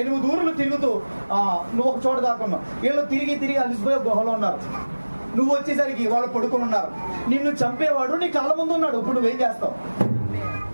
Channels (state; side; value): inverted; both; correlation -1.00